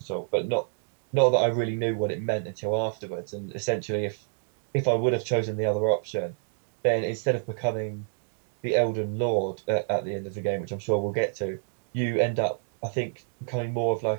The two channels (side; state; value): left; silent; digital silence